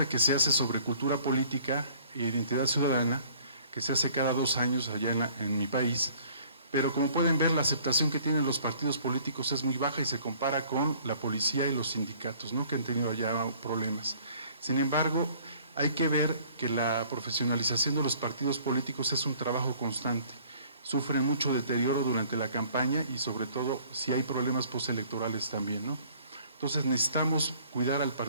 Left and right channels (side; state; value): both; inverted; correlation -0.55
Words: que se hace sobre cultura política e identidad ciudadana, que se hace cada 2 años allá en mi país, pero como pueden ver, la aceptación que tienen los partidos políticos es muy baja y se compara con la policía y los sindicatos, ¿no?, que han tenido allá problemas. Sin embargo, hay que ver que la profesionalización de los partidos políticos es un trabajo constante. Sufren mucho deterioro durante la campaña y sobre todo si hay problemas postelectorales también, ¿no? Entonces necesitamos cuidar al